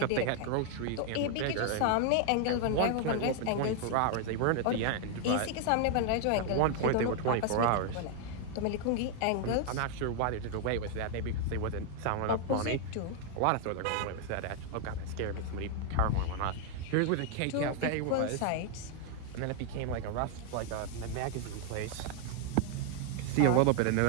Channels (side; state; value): both; different; correlation 0.00